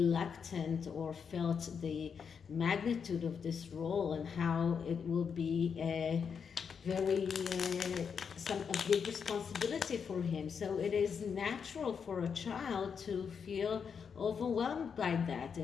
or felt the magnitude of this role and how it will be a big responsibility for him. So it is natural for a child to feel overwhelmed by that.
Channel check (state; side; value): quieter; right; 6.5 dB